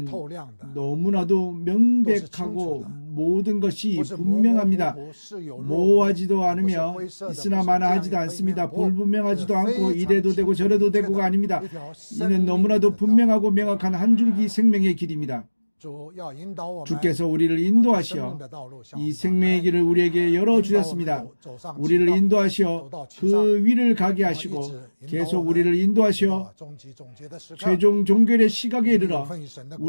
透亮的， 너무나도 명백하고 모든 것이 不是模模糊 분명합니다. 糊，是有若无， 모호하지도 않으며 不是灰色的， 있으나 不是 마나하지도 这样一个 않습니다. 一面 불분명하지도 是 않고 非常 이래도 되고 清楚 저래도 明确 되고가 的 아닙니다. 一条生 이는 命 너무나도 的道。 분명하고 명확한 한 줄기 생명의 길입니다. 主要引导我们 주께서 우리를 往生命 인도하시어 的道路向 이 我们 생명의 打开 길을 우리에게 열어주셨습니다. 引导我们走上 우리를 直道 인도하시어 그 위를 가게 하시고 계속 우리를 인도하시어 终极总结的时刻， 최종 종결의 시각에 有 이르러 份于神的国，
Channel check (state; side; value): inverted; both; correlation -1.00